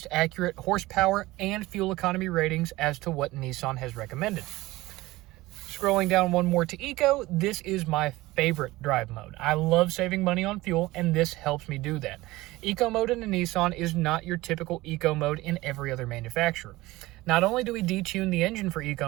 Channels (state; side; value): quieter; left; 19.1 dB